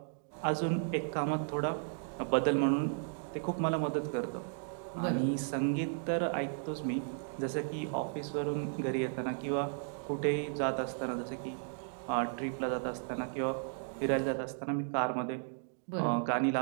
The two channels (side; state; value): left; silent; digital silence